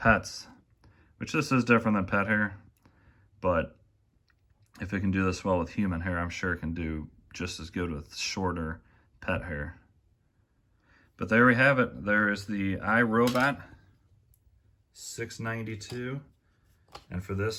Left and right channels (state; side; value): identical; both; correlation 1.00